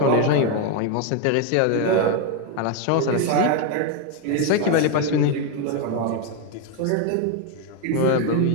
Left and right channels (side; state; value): both; different; correlation 0.01